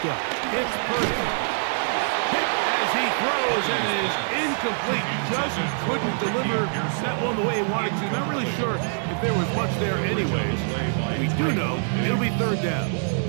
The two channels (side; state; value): left; silent; 61 dB below the other